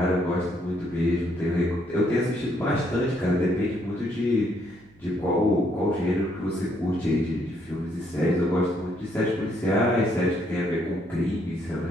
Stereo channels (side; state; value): right; noise; hum, 28 dB below the sound